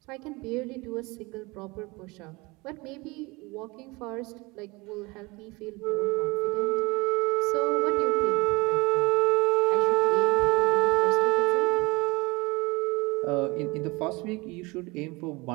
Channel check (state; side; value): quieter; left; 24.6 dB